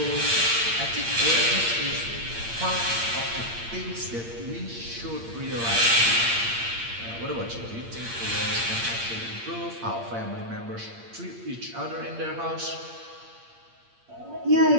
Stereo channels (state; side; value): late; left; 8.7 ms